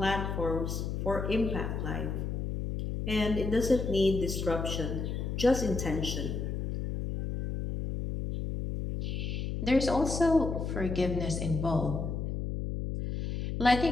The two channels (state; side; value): noise; left; hum, 3 dB below the sound